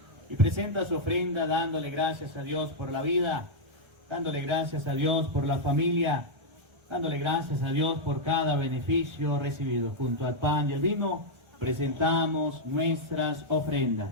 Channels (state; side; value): late; left; 1.3 ms